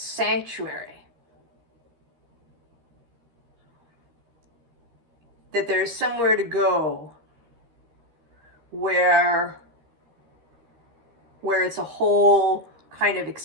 That there's somewhere to go where it's a whole kind of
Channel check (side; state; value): left; late; 13 ms